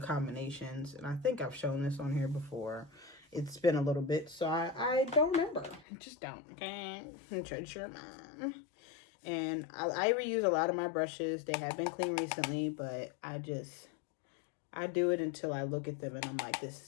and I think I've shown this on here before. It's been a little bit, so I don't remember. Just don't, okay? Treasure your mind. And I reuse a lot of my brushes. They have been clean recently, but I do it until I look at them and I'm like, this is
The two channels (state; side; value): drops out; right; at 5.9 s